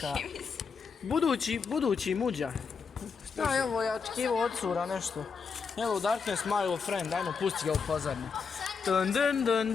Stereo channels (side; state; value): right; quieter; 5.6 dB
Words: Budući muđa. Šta je ovo, ja očekivao od cura nešto. Hello Darkness, my old friend, ajmo pusti ga u pozadnju. Dun.